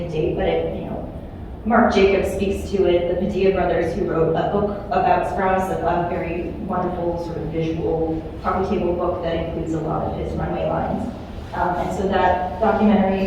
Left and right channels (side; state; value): both; identical; correlation 1.00